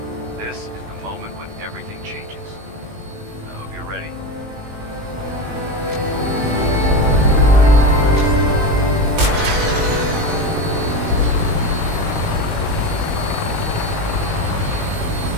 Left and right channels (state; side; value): late; left; 19 ms